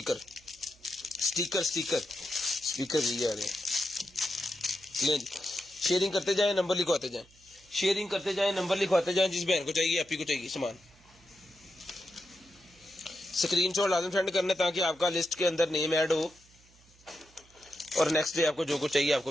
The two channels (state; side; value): noise; right; hum, 28 dB below the sound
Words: sticker sticker speaker भी आ रहे हैं। ले जी, शेयरिंग करते जाएं, नंबर लिखवाते जाएं, शेयरिंग करते जाएं, नंबर लिखवाते जाएं। जिस बहन को चाहिए, आप ही को चाहिए सामान, स्क्रीनशॉट लाजम सेंड करना ताकि आपका लिस्ट के अंदर नेम ऐड हो और नेक्स्ट डे आपको जो कुछ चाहिए